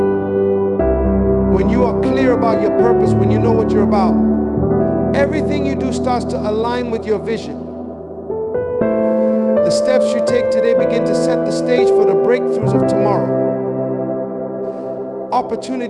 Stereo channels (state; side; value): identical; both; correlation 1.00